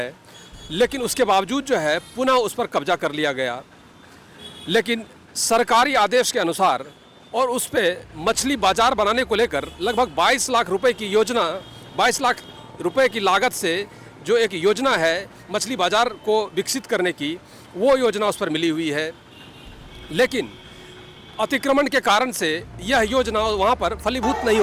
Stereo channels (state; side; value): identical; both; correlation 1.00